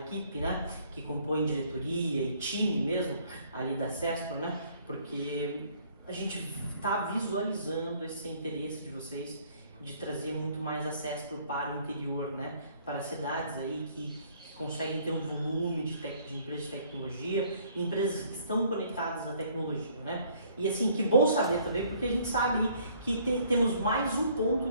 né, que compõe diretoria e time mesmo ali da CESPRO, né, porque a gente está visualizando esse interesse de vocês de trazer muito mais a CESPRO para o interior, né, para cidades aí que conseguem ter um volume de empresas de tecnologia, empresas que estão conectadas à tecnologia, né? E assim, que bom saber também, porque a gente sabe que temos mais um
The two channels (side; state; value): both; inverted; correlation -0.61